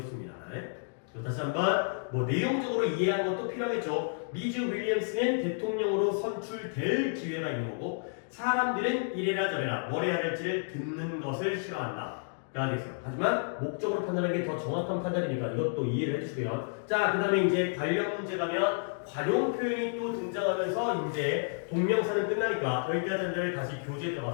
다시 한번 내용적으로 이해하는 것도 필요하겠죠. 미즈 윌리엄스는 대통령으로 선출될 기회가 있는 거고 사람들은 이래라 저래라 뭘 해야 할지를 듣는 것을 싫어한다. 되겠어요. 하지만 목적으로 판단하는 게 더 정확한 판단이니까 이것도 이해를 해주시고요. 자, 그 다음에 이제 관련 문제 가면 관용 표현이 또 등장하면서 이제 동명사는 끝나니까 여기까지 한다음에 다시 교재에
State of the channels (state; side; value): silent; right; digital silence